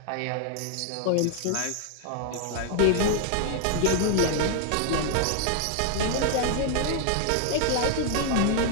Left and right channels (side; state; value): both; different; correlation 0.00